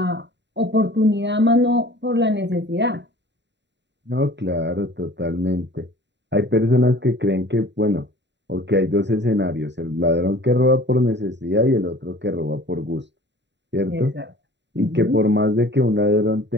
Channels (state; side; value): late; left; 0.52 ms